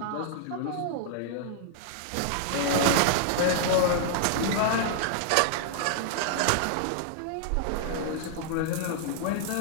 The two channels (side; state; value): both; different; correlation -0.01